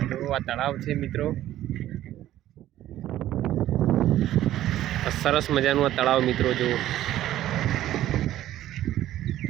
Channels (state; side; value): quieter; left; 13.3 dB